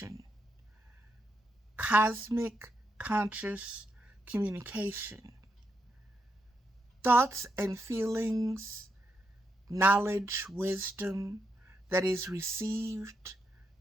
Cosmic conscious communication. Thoughts and feelings, knowledge, wisdom that is received,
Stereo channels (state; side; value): normal; both; correlation 0.82